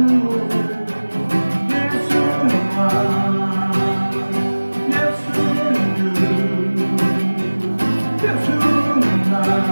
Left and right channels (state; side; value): inverted; both; correlation -1.00